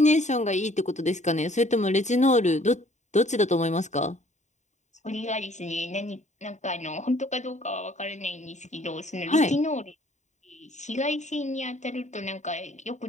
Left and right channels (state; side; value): late; right; 0.34 ms